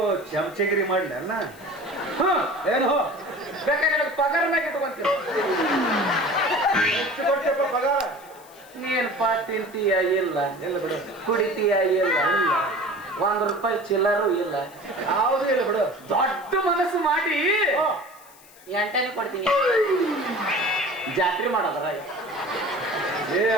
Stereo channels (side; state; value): left; noise; hiss, 24 dB below the sound